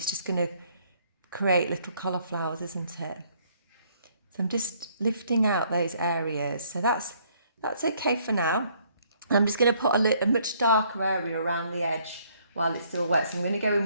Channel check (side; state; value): both; inverted; correlation -0.65